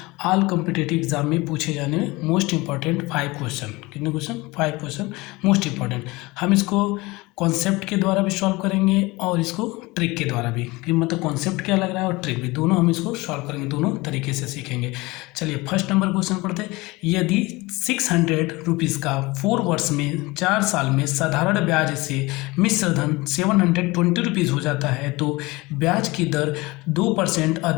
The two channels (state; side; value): quieter; right; 22.5 dB